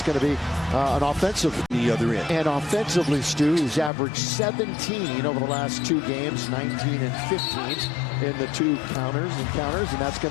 going to be an offensive. The other end. And offensively, Stu, he's averaged 17 over the last two games, 19 and 15 in the two counters, and that's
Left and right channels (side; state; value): right; drops out; at 3.9 s